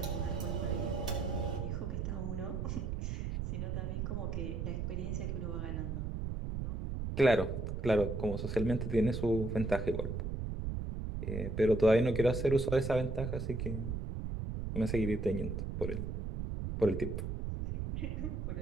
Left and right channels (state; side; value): noise; right; rumble, 3 dB below the sound